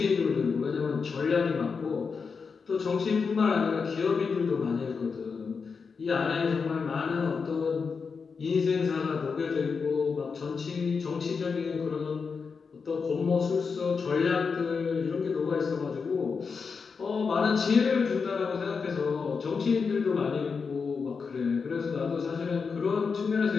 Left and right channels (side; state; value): right; quieter; 5.3 dB